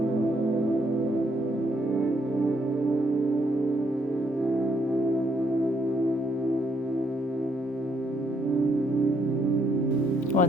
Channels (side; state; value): both; normal; correlation 0.72